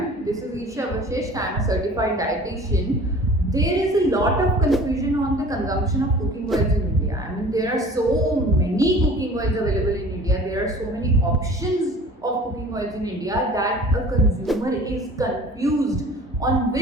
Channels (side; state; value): both; normal; correlation 0.45